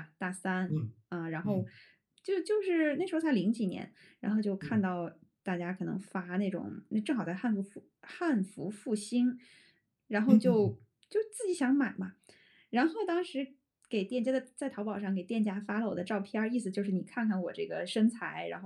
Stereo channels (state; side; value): identical; both; correlation 1.00